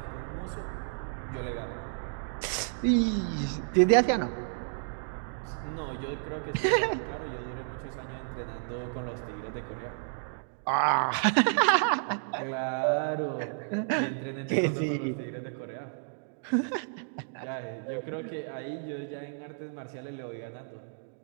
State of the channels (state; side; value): silent; left; digital silence